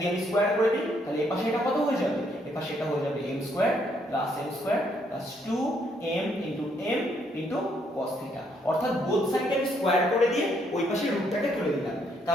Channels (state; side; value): normal; both; correlation 0.71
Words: আমি স্কয়ার করে দিই, তাহলে এই পাশে এটা কত হয়ে যাবে? এই পাশে এটা হয়ে যাবে m square + m square + 2m × m × cos theta. অর্থাৎ বোথ সাইডে আমি স্কোয়ার করে দিয়ে ওই পাশে রুটটাকে তুলে দিলাম।